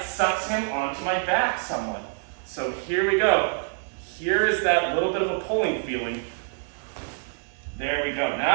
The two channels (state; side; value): silent; left; 61 dB below the other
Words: sucks him onto my back somewhat. So here we go. Here is that little bit of a pulling feeling. There we go.